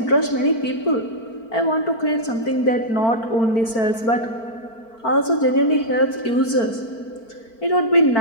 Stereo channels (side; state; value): right; late; 4.5 ms